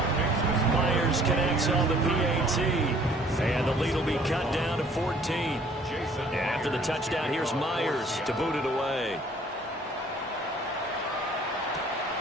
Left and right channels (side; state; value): both; normal; correlation 0.56